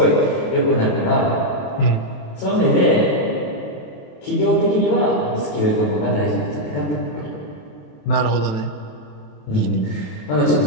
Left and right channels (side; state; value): right; late; 27 ms